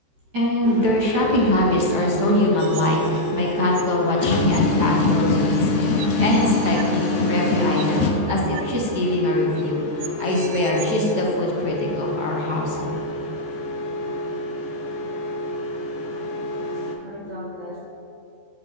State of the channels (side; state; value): left; late; 14 ms